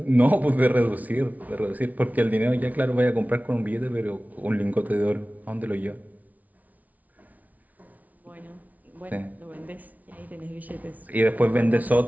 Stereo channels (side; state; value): left; late; 0.073 ms